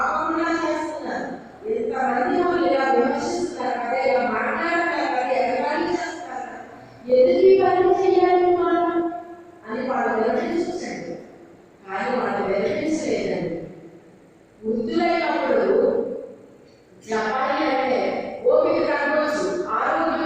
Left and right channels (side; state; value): both; identical; correlation 1.00